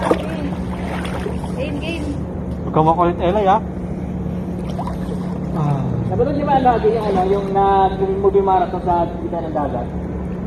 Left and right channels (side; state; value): both; identical; correlation 1.00